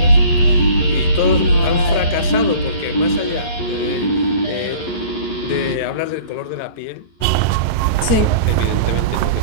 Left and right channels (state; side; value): late; right; 11 ms